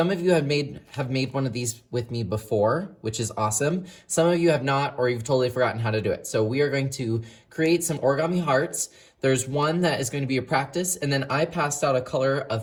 of you have made one of these with me before, which is awesome. Some of you have not, or you've totally forgotten how to do it. So we are going to create some origami hearts. There's one that is going to be a practice, and then I passed out a color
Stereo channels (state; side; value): identical; both; correlation 1.00